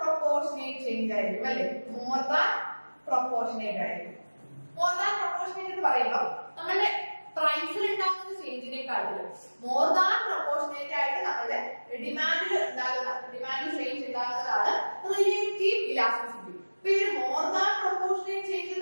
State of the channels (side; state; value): both; inverted; correlation -1.00